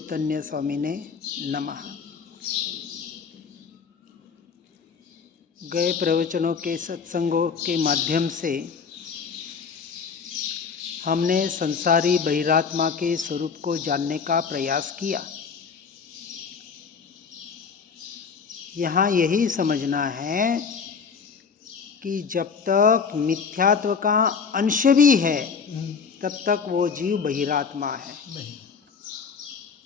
स्वामी ने नमः। गए प्रवचनों के सत्संगों के माध्यम से हमने संसारी बहिरात्मा के स्वरूप को जानने का प्रयास किया। यहाँ यही समझना है कि जब तक मिथ्यात्व का अंश भी है तब तक वो जीव बहिरात्मा है,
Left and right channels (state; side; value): quieter; right; 5.9 dB